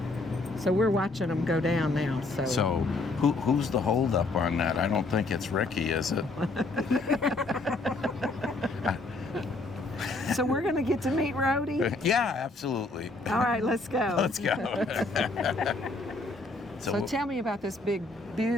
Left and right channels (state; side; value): quieter; right; 3.2 dB